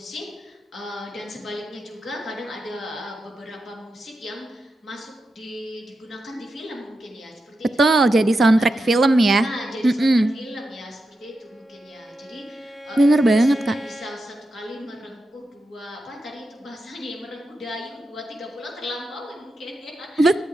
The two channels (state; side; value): normal; both; correlation 0.88